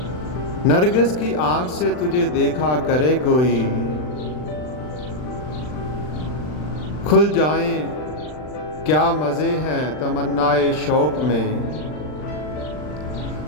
नरगिस की आँख से तुझे देखा करे कोई। खुल जाएं क्या मज़े हैं तमन्नाए शौक़ में,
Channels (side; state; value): right; late; 39 ms